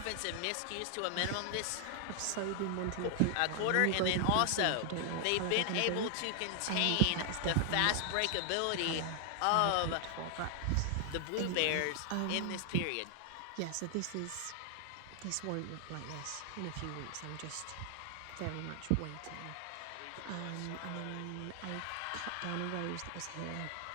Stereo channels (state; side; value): different; both; correlation 0.00